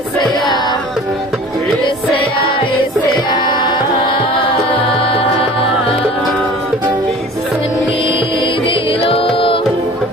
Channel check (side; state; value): both; normal; correlation 0.44